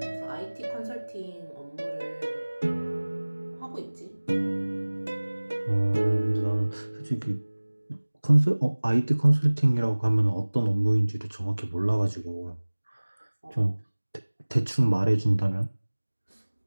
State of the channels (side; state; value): both; inverted; correlation -1.00